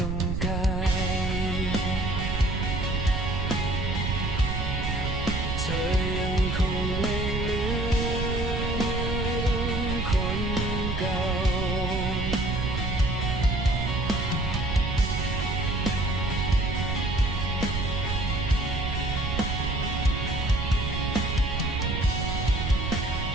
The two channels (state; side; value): noise; right; rumble, 2 dB below the sound